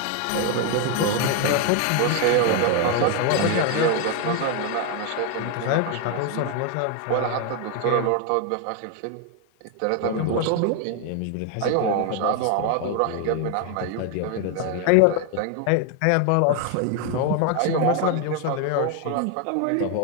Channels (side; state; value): both; different; correlation 0.01